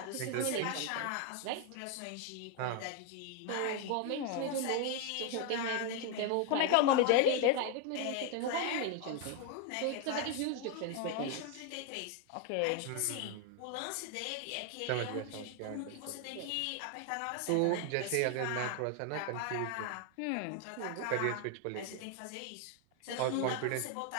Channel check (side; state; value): both; different; correlation 0.01